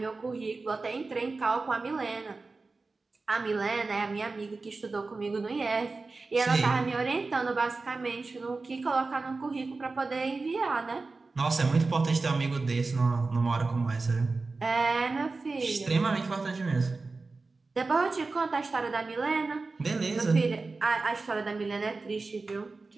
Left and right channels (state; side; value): quieter; left; 3.8 dB